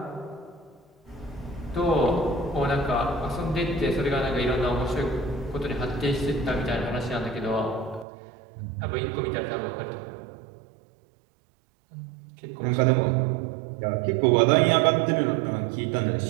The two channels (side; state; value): left; drops out; at 8.1 s